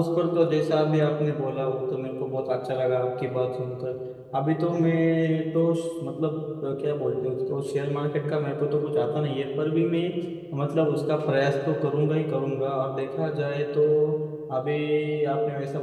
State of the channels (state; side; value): identical; both; correlation 1.00